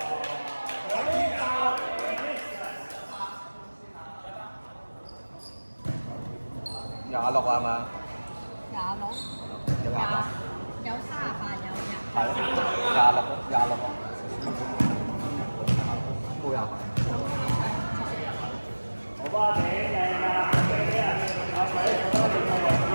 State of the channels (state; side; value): inverted; both; correlation -1.00